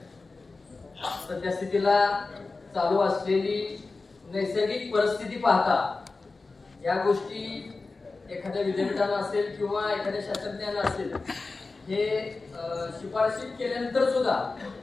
सध्या स्थितीला चालू असलेली नैसर्गिक परिस्थिती पाहता या गोष्टी एखाद्या विद्यापीठाला असेल किंवा एखाद्या शास्त्रज्ञाला असेल हे शिफारशी केल्यानंतर सुद्धा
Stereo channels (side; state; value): right; quieter; 3.8 dB